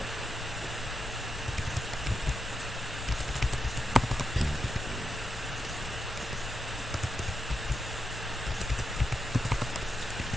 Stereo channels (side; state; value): both; normal; correlation 0.85